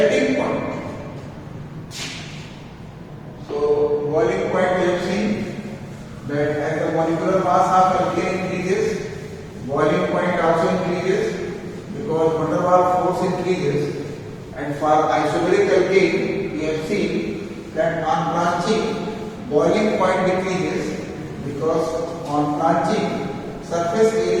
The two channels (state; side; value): identical; both; correlation 1.00